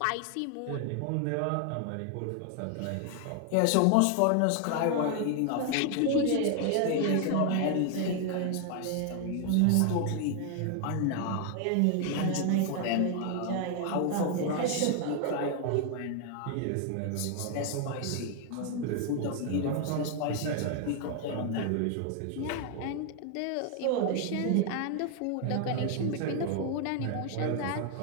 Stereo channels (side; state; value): both; different; correlation 0.00